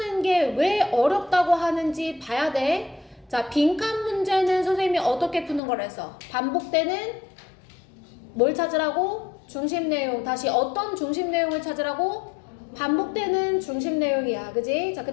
게 왜 어렵다고 하는지 봐야 돼. 자, 빈칸 문제는 선생님이 어떻게 푸는 걸 해서 반복되는 뭘 찾으라고? 중심 내용. 다시 어떤 중심 내용을 찾으라고? 반복되는 중심 내용이야. 그지? 자, 그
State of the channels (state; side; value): drops out; right; at 5.6 s